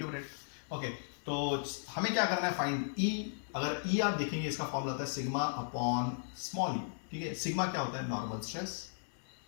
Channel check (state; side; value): silent; right; digital silence